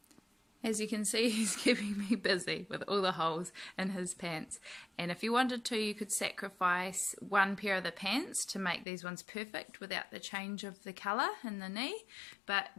As you can see, he's keeping me busy with all the holes in his pants, and if you wanted to, you could sacrifice one pair of the pants to make these ones perfect without the change of the colour in the knee, but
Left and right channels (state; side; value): drops out; right; at 8.8 s